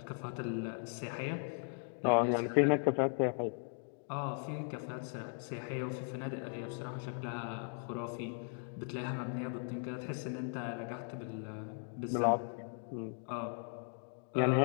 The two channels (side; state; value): right; silent; 53 dB below the other